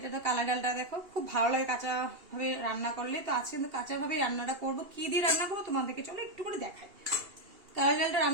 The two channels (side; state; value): left; late; 2.8 ms